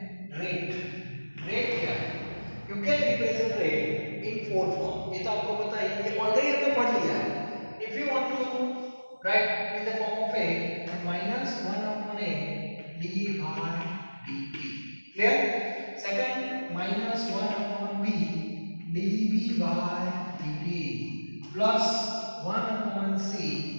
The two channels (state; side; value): inverted; both; correlation -1.00